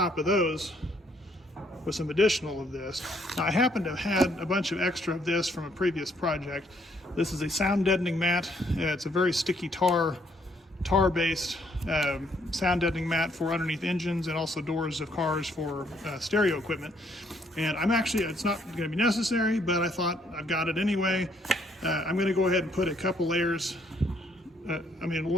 of those with some additional of this. Now, I happen to have had a bunch of extra of this from a previous project. This is a sound deadening mat. It's a very sticky tar-based sound deadening mat for underneath engines and also doors of cars for stereo equipment. And it's not going to be necessary, but I thought I've got it anyway. I'm going to go ahead and put a couple layers,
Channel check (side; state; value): both; normal; correlation 0.68